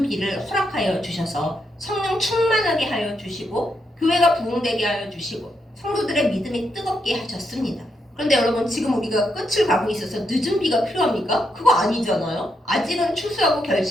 허락하여 주셔서 성령 충만하게 하여 주시고 교회가 부흥되게 하여 주시고 성도들의 믿음이 뜨겁게 하셨습니다. 그런데 여러분 지금 우리가 끝을 가고 있어서 늦은 비가 필요합니까? 그거 아니잖아요. 아직은 추수하고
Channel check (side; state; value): both; normal; correlation 0.81